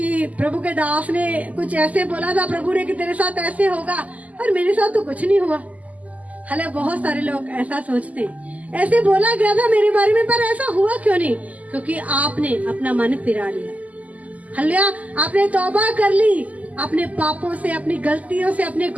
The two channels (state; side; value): late; left; 0.074 ms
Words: प्रभु के दास ने कुछ ऐसे बोला था प्रभु ने कि तेरे साथ ऐसे होगा और मेरे साथ तो कुछ नहीं हुआ। हालांकि बहुत सारे लोग ऐसा सोचते हैं, ऐसे बोला गया था मेरे बारे में, पर ऐसा हुआ क्यों नहीं? क्योंकि आपने अपना मन फिरा लिया। हालेलुया, आपने तौबा कर ली अपने पापों से, अपनी गलतियों से, अपने